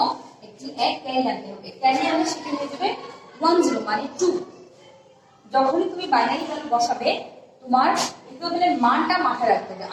একটি 1 ক্যারি আনতে হবে। ক্যারি আনলে সেটি হয়ে যাবে 1 0 মানে 2। যখনই তুমি বাইনারি ভ্যালু বসাবে, তোমার ইকুইভ্যালেন্ট মানটা মাথায় রাখতে হবে,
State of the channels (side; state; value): both; identical; correlation 1.00